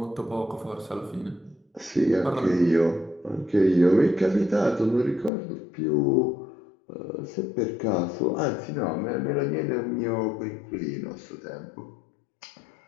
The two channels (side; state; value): right; drops out; at 5.3 s